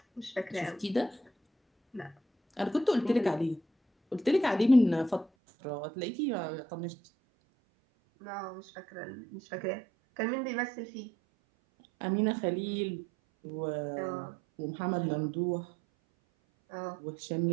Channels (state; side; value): drops out; left; at 5.2 s